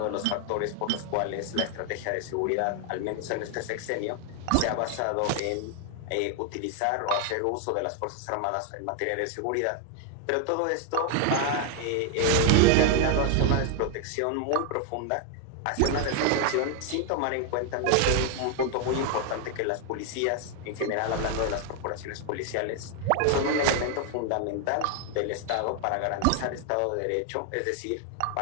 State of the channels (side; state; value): both; different; correlation 0.00